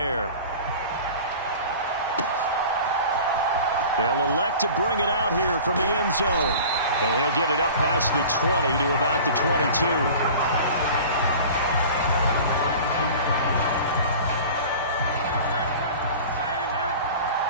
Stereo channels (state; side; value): inverted; both; correlation -0.39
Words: They'll elect to bring it out here from the end zone. And he'll get it up past the 20 to about the 22.